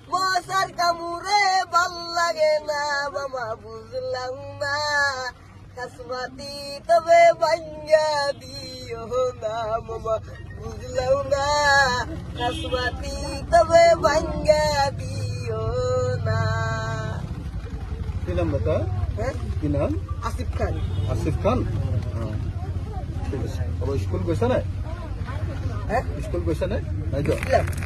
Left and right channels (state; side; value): identical; both; correlation 1.00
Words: মশার কামুরে ভাল লাগে না মামা বুঝলাম না খাসমাতি তবে ভাঙ্গা দিও না মামা বুঝলাম না খাসমাতি তবে ভাঙ্গা দিও না কি নাম বাতা হ্যাঁ কি নাম আসিফ খান আসিফ খান ঠিক আছে আবার স্কুল গৈছা নাই হ্যাঁ স্কুল গৈছা নাই নাই তো